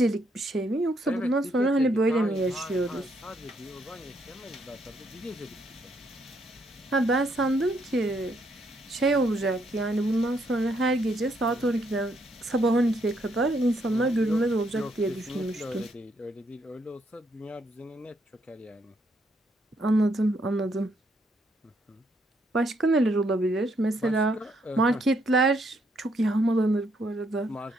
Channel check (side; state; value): both; normal; correlation 0.73